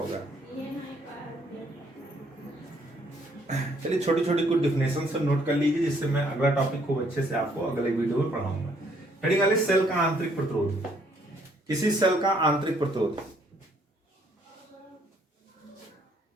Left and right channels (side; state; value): both; normal; correlation 0.66